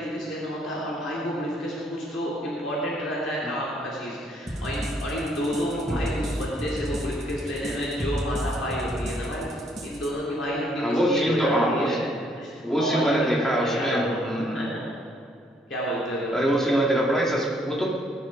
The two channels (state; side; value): normal; both; correlation 0.68